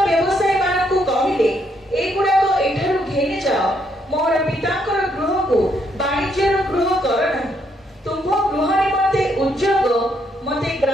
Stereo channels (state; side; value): normal; both; correlation 0.74